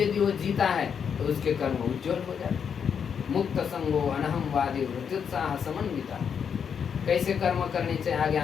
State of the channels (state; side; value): quieter; right; 7.2 dB